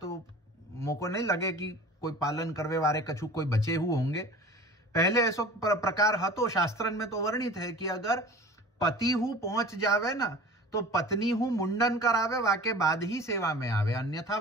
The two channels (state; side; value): normal; both; correlation 0.40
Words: मोको नहीं लगे कि कोई पालन करवे वारे कछु कोई बचे हुए होंगे। पहले ऐसो प्रकार हतो, शास्त्रन में तो वर्णित है कि अगर पति हु पहुंच जावे ना तो पत्नी हु मुंडन करावे, वाके बाद ही सेवा में आवे, अन्यथा